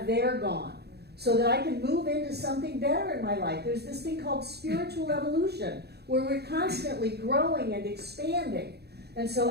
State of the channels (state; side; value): late; left; 0.47 ms